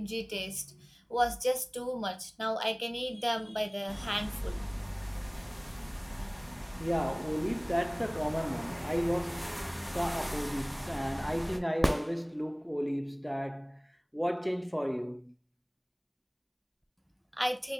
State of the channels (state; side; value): identical; both; correlation 1.00